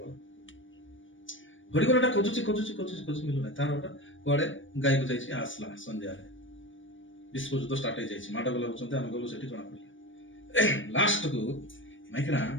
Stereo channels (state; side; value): late; right; 0.56 ms